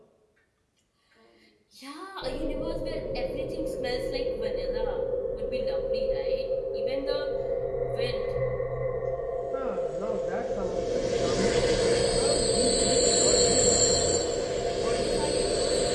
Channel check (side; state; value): both; identical; correlation 1.00